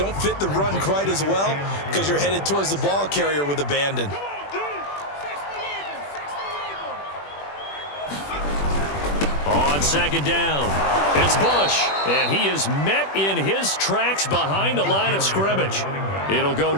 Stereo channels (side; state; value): right; late; 21 ms